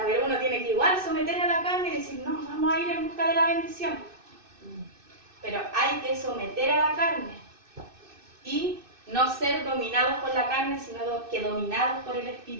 pero uno tiene que igual someter a la carne y decir, no, vamos a ir en busca de la bendición. Pero hay que someter a la carne y no ser dominados por la carne, sino que dominados por el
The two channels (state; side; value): late; left; 2.6 ms